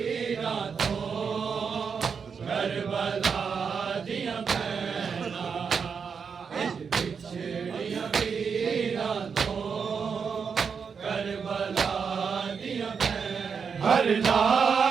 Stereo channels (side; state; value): left; quieter; 6.1 dB